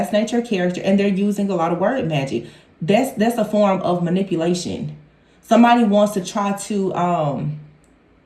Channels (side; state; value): both; identical; correlation 1.00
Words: your character, and they're using a lot of word magic. That's a form of manipulation. Somebody wants to try to